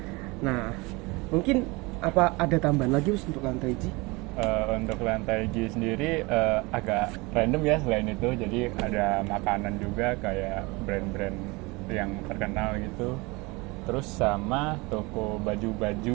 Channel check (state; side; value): quieter; left; 25.1 dB